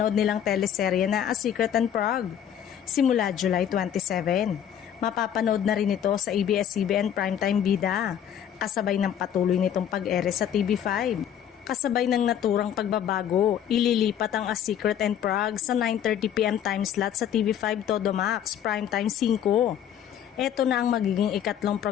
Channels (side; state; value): right; quieter; 9.6 dB